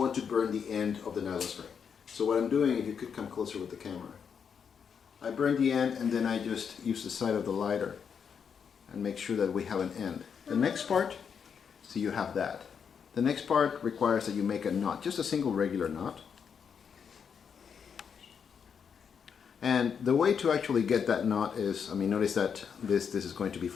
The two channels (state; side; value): quieter; right; 6.9 dB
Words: to burn the end of the nylon string. So what I'm doing, if you could come closer with the camera, I burn the end and then I just use the side of the lighter and make sure that we have an end. The next part, so you have that. The next part requires that you make a knot, just a single regular knot. And the way to actually get that knot is, notice that this is going to be